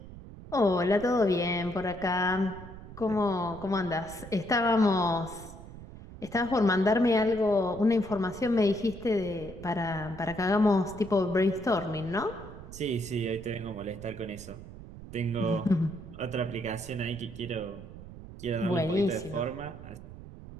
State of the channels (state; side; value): noise; right; rumble, 15 dB below the sound